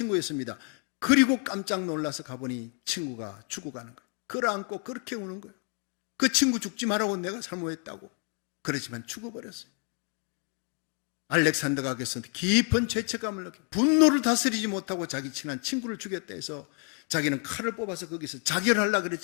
그리고 깜짝 놀라서 가보니 친구가 죽어가는 거예요. 끌어안고 그렇게 우는 거예요. 그 친구 죽지 말라고 내가 사모했다고. 그렇지만 죽어버렸어요. 알렉산더가 그래서 깊은 죄책감을 느끼고 분노를 다스리지 못하고 자기 친한 친구를 죽였다 해서 자기는 칼을 뽑아서 거기서 자결하려고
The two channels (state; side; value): quieter; right; 37.3 dB